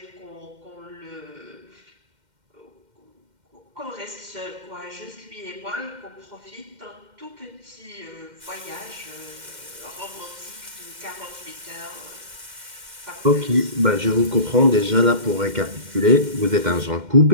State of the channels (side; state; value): left; late; 2.1 ms